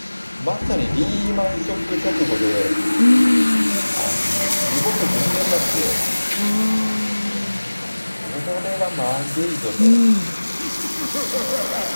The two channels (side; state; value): both; inverted; correlation -1.00